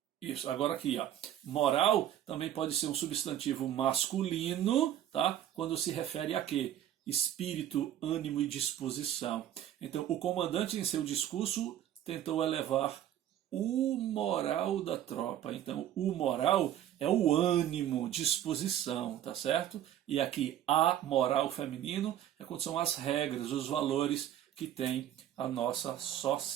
isso, agora aqui, moral também pode ser um substantivo masculino, tá? Quando se refere a quê? Espírito, ânimo e disposição. Então, o comandante em seu discurso tentou elevar o moral da tropa. Então, o moral é o ânimo, disposição, tá certo? E aqui, a moral feminino é quando são as regras, os valores que tem a nossa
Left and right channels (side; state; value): left; quieter; 11.3 dB